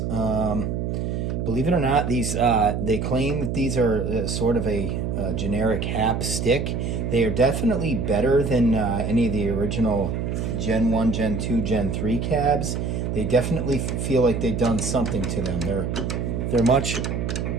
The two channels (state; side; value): noise; right; hum, 2 dB below the sound